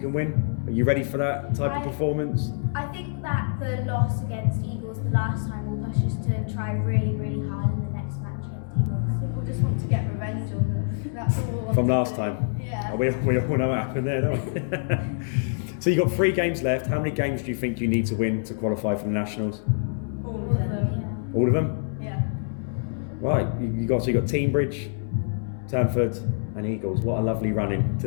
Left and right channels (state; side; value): silent; right; 61 dB below the other